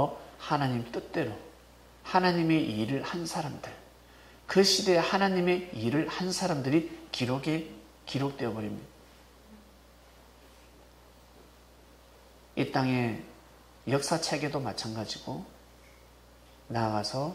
하나님 뜻대로 하나님의 일을 한 사람들, 그 시대에 하나님의 일을 한 사람들이 기록되어 버립니다. 이 땅의 역사책에도 마찬가지고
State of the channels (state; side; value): identical; both; correlation 1.00